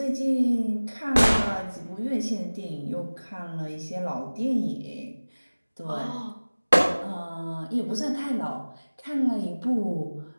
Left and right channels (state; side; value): inverted; both; correlation -1.00